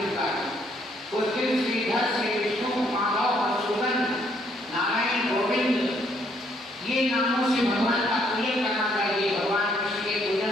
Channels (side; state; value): both; normal; correlation 0.68